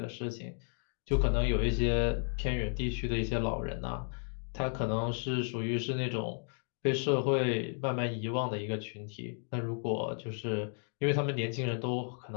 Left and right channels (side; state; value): right; silent; 55 dB below the other